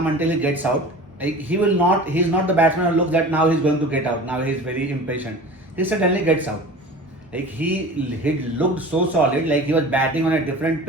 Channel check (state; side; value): normal; both; correlation 0.38